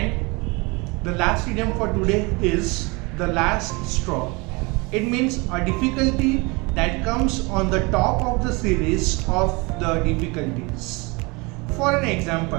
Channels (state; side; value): quieter; left; 27.0 dB